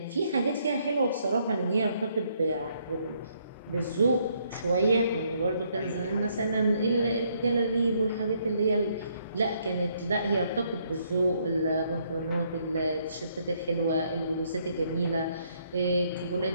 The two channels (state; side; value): inverted; both; correlation -0.71